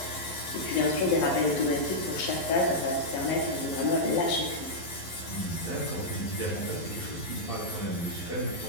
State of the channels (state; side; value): late; right; 11 ms